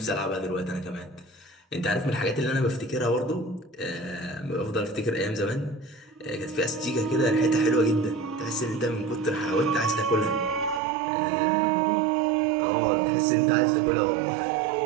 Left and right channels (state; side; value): drops out; left; at 10.8 s